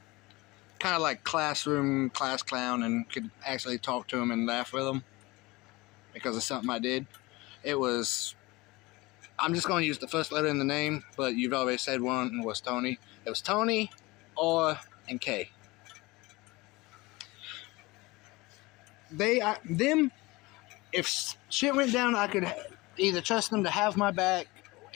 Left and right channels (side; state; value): right; quieter; 22.3 dB